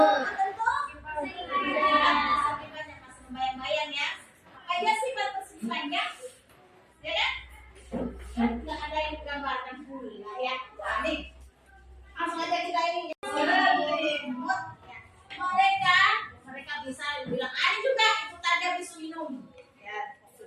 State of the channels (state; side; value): identical; both; correlation 1.00